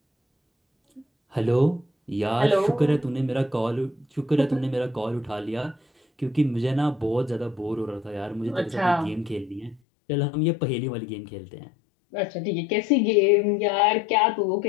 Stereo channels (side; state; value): right; drops out; at 9.8 s